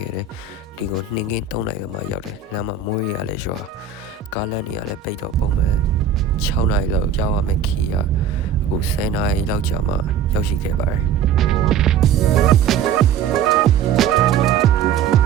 ခဲ့တယ်ဒီကိုနှင်းကင်း3နာရီမှရောက်တယ်လမ်းမှာမိုးရလည်းရွာကားလမ်းတွေကလည်းပိတ်တော့ပုံမှန်6နာရီလောက်ရောက်ရမယ်ခီးရအခု10နာရီလောက်ကြာမှရောက်ရှိခဲ့ပါတယ်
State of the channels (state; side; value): quieter; left; 7.5 dB